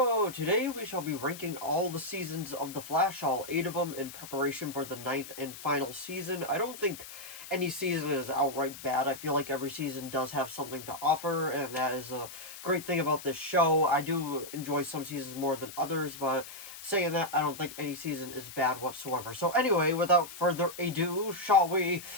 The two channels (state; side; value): noise; left; hiss, 13 dB below the sound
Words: Today we shall be ranking all the seasons of The Flash, all 8 of them, in preparation for the 9th and final season. I don't think any season is outright bad. I feel like every season does have something to offer, and that is a great thing about this show. I do enjoy some seasons more than others, but saying that, I don't think any season is bad whatsoever. So anyway, without further ado, shall we